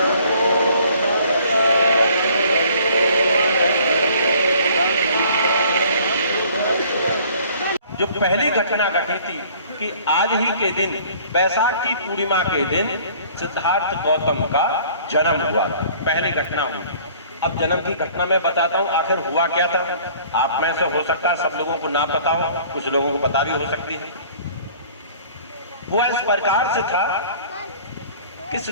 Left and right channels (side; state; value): both; inverted; correlation -0.53